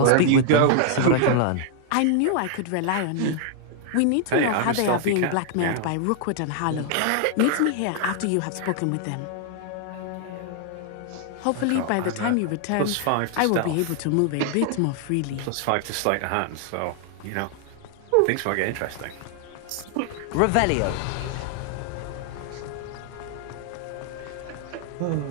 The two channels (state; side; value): different; both; correlation 0.00